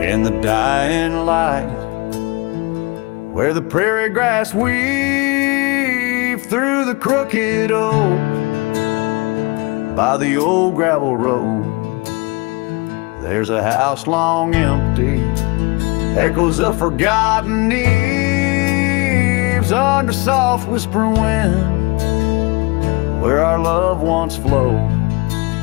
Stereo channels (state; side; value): quieter; right; 25.7 dB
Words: In the dying light, where the prairie grass weaves through the crooked oak, by the old gravel road, there's a house long empty, echoes of forgotten eves under soft whispering wind, where our love once flowed.